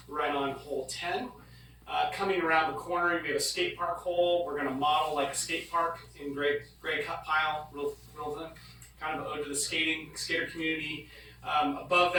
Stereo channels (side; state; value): both; identical; correlation 1.00